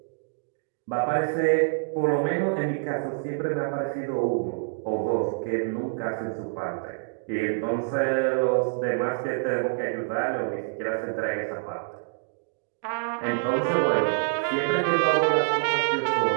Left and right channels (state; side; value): silent; left; digital silence